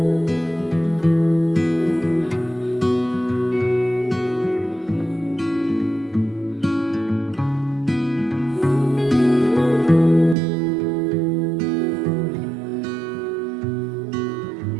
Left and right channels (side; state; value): left; drops out; at 10.4 s